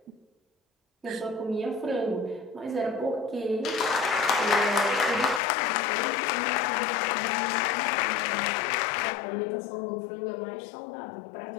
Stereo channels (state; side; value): drops out; right; at 5.4 s